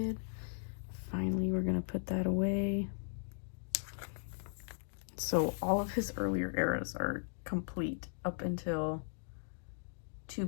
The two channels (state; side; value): silent; right; digital silence